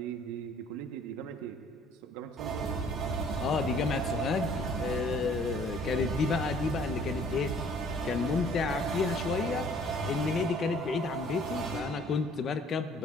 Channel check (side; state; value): both; normal; correlation 0.56